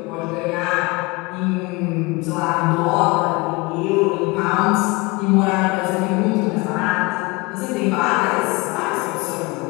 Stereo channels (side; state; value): right; quieter; 25.2 dB